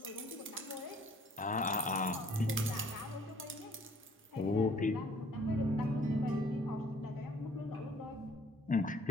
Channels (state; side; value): normal; both; correlation 0.58